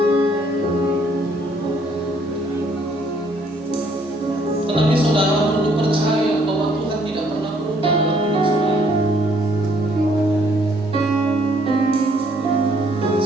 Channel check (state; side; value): normal; both; correlation 0.65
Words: Tetapi saudara perlu percaya bahwa Tuhan tidak pernah berubah dalam hidup saudara.